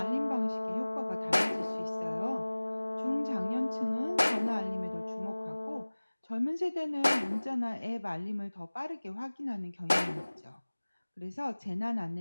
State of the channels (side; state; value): both; inverted; correlation -1.00